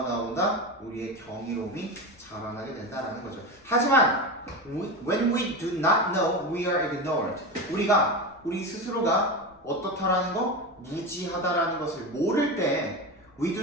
나온다? 우리의 경이로움이 자라나게 된다는 거죠. 하지만 when we do not know we are ignorant. 우리 스스로가 어떻다라는 거? 무지하다라는 것을 모를 때 we do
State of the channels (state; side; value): noise; left; rumble, 29 dB below the sound